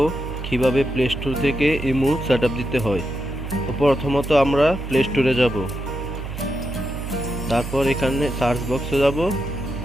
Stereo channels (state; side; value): noise; right; hum, 7 dB below the sound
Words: কিভাবে প্লে স্টোর থেকে ইমো সেটআপ দিতে হয়। তো প্রথমত আমরা প্লে স্টোরে যাব, তারপর এখানে সার্চ বক্সে যাব,